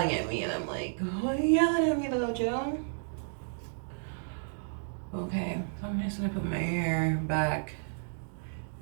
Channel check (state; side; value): silent; left; digital silence